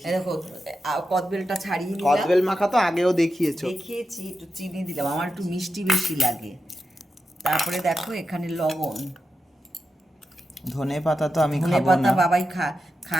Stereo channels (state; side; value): normal; both; correlation 0.89